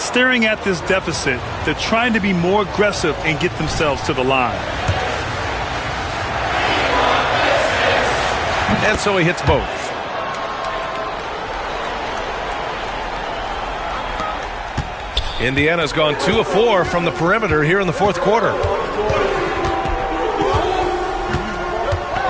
at this deficit, they're trying to be more aggressive and get themselves to the line. And so he hits both. Indiana's gone 2 of 4 from the perimeter here in the fourth quarter.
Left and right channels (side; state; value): both; identical; correlation 1.00